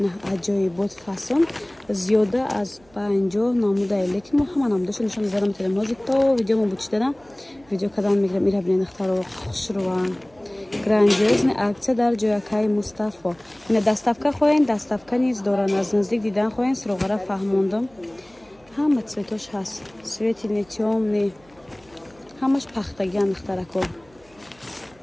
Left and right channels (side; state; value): right; noise; hum, 30 dB below the sound